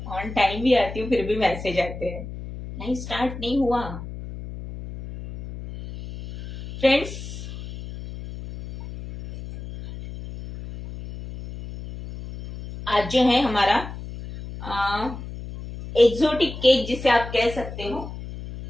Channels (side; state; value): left; noise; hum, 11 dB below the sound